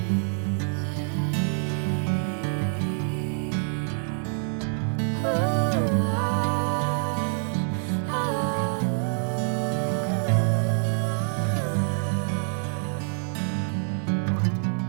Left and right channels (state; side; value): silent; left; 56 dB below the other